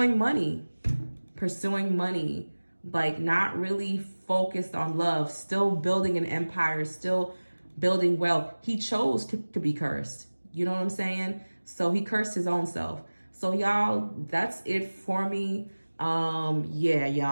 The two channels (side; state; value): both; inverted; correlation -1.00